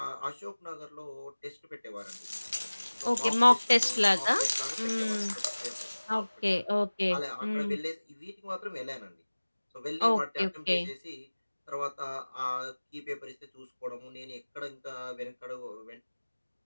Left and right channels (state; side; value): inverted; both; correlation -1.00